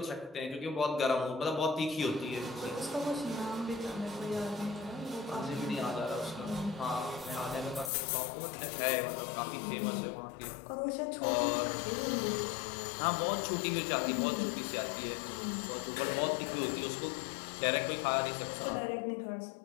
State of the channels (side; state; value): right; drops out; at 7.9 s